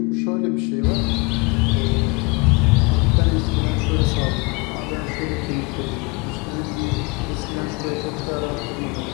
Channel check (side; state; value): right; quieter; 27.5 dB